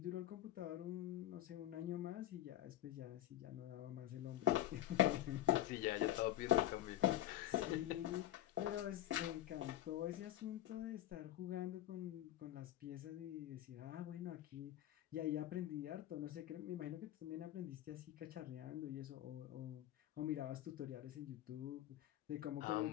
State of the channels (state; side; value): quieter; right; 13.5 dB